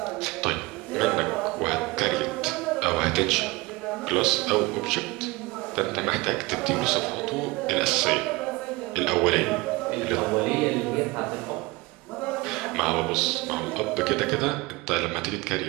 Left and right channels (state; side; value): quieter; left; 22.7 dB